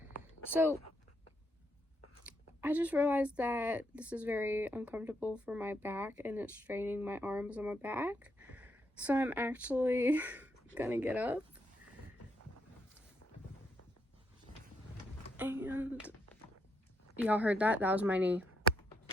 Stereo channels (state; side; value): normal; both; correlation 0.77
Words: So I just realized that this is very uncomfortable for my back and it's straining my arms and my back. So I'm actually gonna get up and y'all heard that? That was my knee.